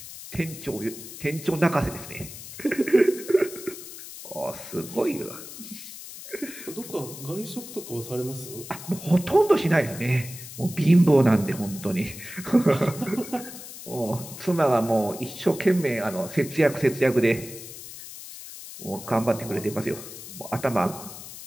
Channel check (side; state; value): left; noise; hiss, 13 dB below the sound